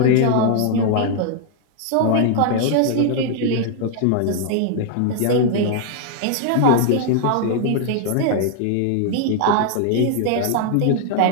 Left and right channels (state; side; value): different; both; correlation 0.00